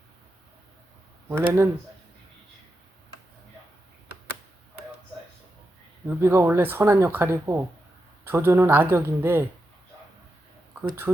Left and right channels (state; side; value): normal; both; correlation 0.87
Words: 원래는 유비가 원래 선한 역할이고 조조는 악역인데 그